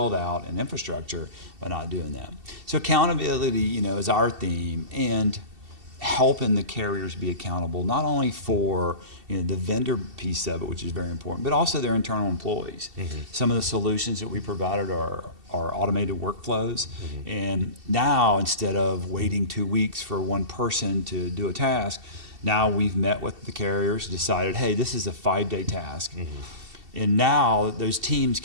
out and infrastructure by not doing that. So accountability, is our theme, and helping the carriers be accountable not only for the vendor piece of it, which is very important, but also their internal employees. Mm-hmm. Some of the solutions that we provided are automated workflows, Mm-hmm. and now instead of waiting 2 weeks for one person to do a task, now we've met with the carriers, decided, hey, this is a 5-day task. Mm-hmm. And now those teams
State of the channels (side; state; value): left; late; 2.7 ms